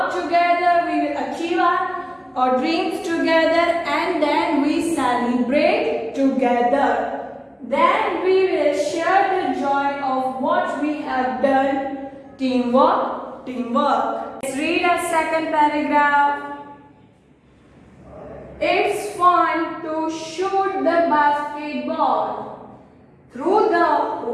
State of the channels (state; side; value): identical; both; correlation 1.00